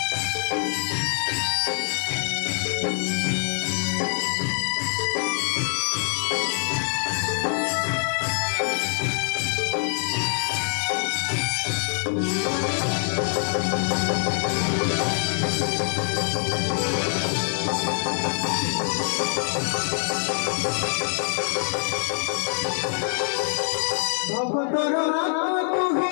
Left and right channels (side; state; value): right; silent; 58 dB below the other